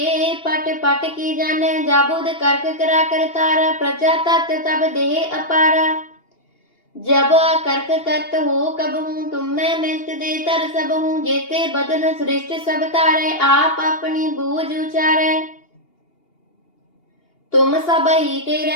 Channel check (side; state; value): right; late; 2.8 ms